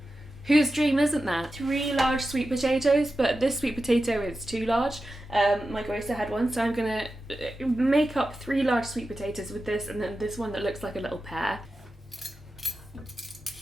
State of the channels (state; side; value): normal; both; correlation 0.92